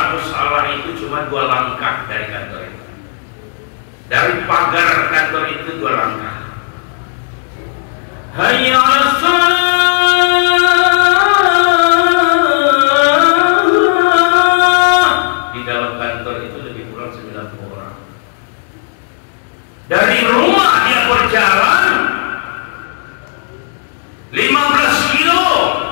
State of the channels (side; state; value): right; silent; digital silence